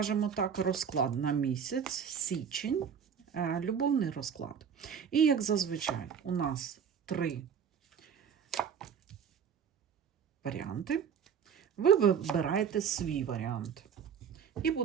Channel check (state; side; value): quieter; left; 7.4 dB